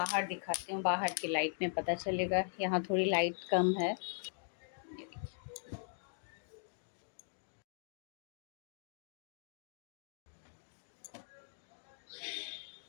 दिखाती हूँ, बाहर की लाइट में पता चलेगा, यहाँ थोड़ी लाइट कम है।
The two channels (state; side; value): silent; right; digital silence